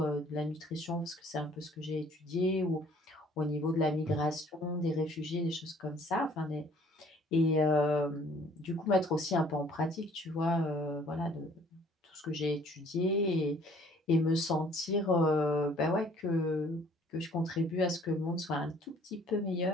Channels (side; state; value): both; normal; correlation 0.57